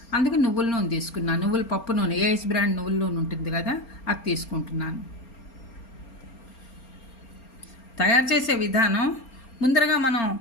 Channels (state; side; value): late; right; 4.3 ms